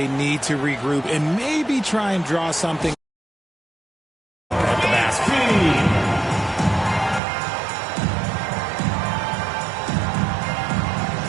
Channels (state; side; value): drops out; left; at 7.2 s